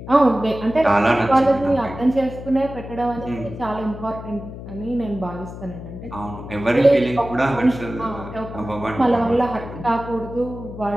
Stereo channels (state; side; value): noise; left; hum, 12 dB below the sound